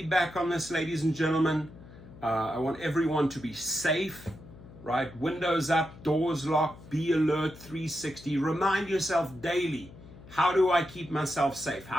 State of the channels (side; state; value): left; noise; hum, 19 dB below the sound